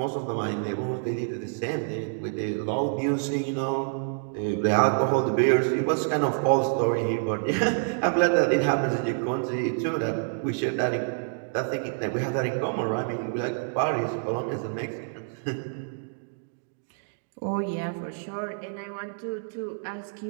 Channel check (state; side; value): silent; left; digital silence